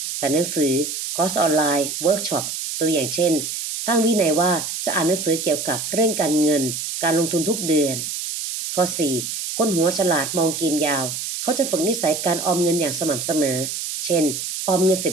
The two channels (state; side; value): noise; right; hiss, 5 dB below the sound